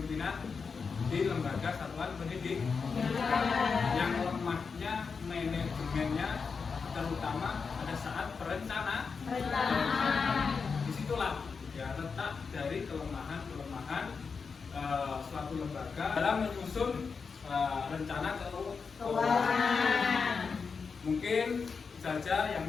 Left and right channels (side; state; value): right; quieter; 5.3 dB